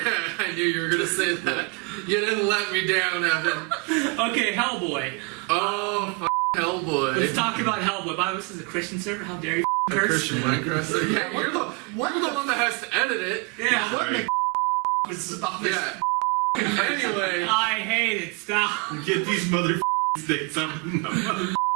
knew you were gonna say that. You didn't let me down, Evan. Okay, Hellboy. Oh, Hellboy. Let's talk about Hellboy. By the way, this is a Christian server. How dare you A curse? Christian Minecraft. So, yeah, you're the one that has to edit it. Yeah. What the was about this? Yeah. Anyway, I hate it. Stop. Get these mother sticks up.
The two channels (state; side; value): quieter; left; 31.4 dB